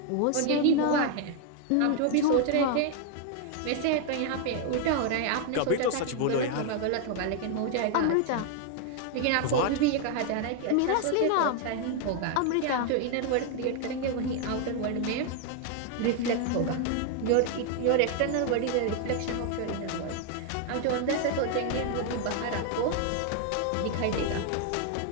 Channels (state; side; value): different; both; correlation 0.01